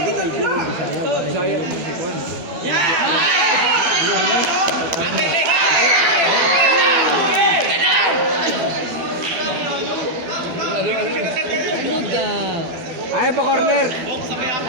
di kayo Bisaya. Bisaya. Ayaw pa corner.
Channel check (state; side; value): late; left; 12 ms